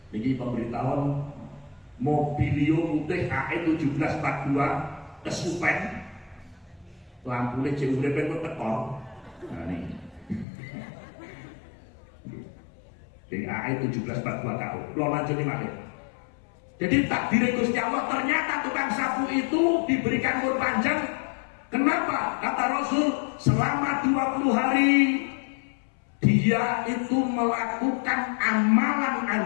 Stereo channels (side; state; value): right; drops out; at 10.5 s